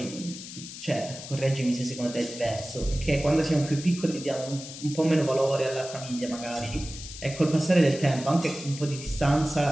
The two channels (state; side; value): noise; left; hiss, 12 dB below the sound